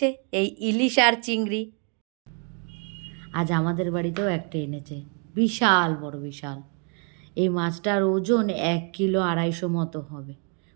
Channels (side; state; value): left; quieter; 39.3 dB